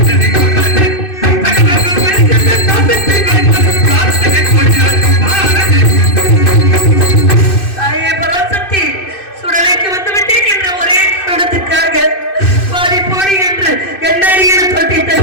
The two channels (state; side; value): late; right; 2.6 ms